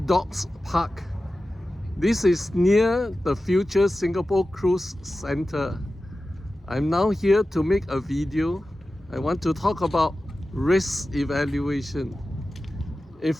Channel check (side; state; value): both; normal; correlation 0.94